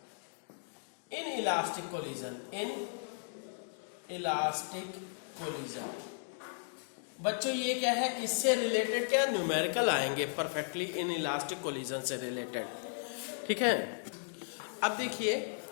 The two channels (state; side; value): silent; right; digital silence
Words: इन इलास्टिक कोलिजन, बच्चों ये क्या है, इससे रिलेटेड क्या न्यूमेरिकल आएंगे, परफेक्टली इन इलास्टिक कोलिजन से रिलेटेड। ठीक है, अब देखिए